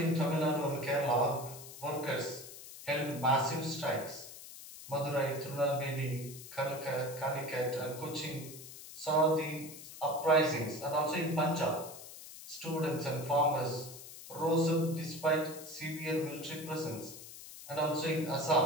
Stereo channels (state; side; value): noise; left; hiss, 14 dB below the sound